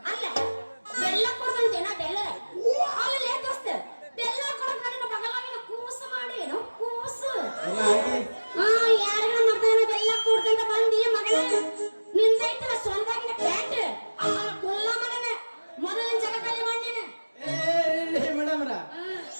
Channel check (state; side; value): inverted; both; correlation -1.00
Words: ಅಲ್ಲ ಬೆಲ್ಲ ಕೊಡ್ದಂತೇನ ಬೆಲ್ಲ ಅಲ್ಲಿ ದೋಸ್ತ ಬೆಲ್ಲ ಕೊಡಕ್ ನನ್ನ ಬಗಲಾಗಿನ ಕೂಸು ಮಾಡಿ ಏನೋ ಕೂಸು ಯಾರಿಗ ಮಗನ ಬೆಲ್ಲ ಕೊಡ್ದಂತ ಬಂದಿ ಮಗನ ನಿಂದೈತಲ್ಲ ಸೊಂದಾಗಿನ ಪ್ಯಾಂಟ್ ಕೊಲ್ಲ ಮಗನ ಮೊದಲಿನ ಜಗದಲ್ಲಿ ಮಾಡಿನ. ಮೇಡಮ್ರ